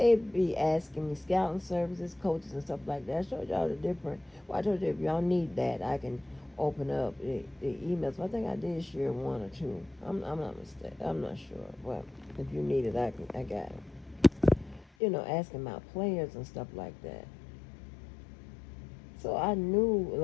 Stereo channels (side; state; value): right; drops out; at 14.9 s